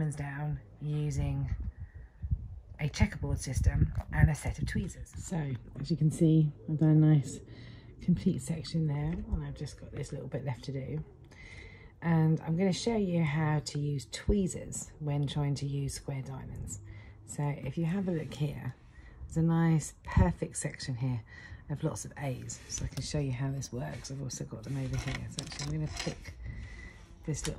down using a checkerboard system and a set of tweezers. So as you can see, I've done a nice complete section there, and I've just got this little bit left to do. And I'm going to show you how to use tweezers when trying to use square diamonds. So if you have a look here, there's a nice perfect section here of lots of A's, so I can show you how this works. I've also got them over here. So actually I'm going to pick this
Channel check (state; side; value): identical; both; correlation 1.00